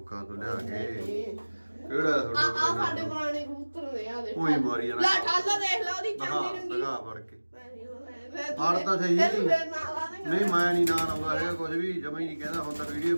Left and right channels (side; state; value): both; inverted; correlation -1.00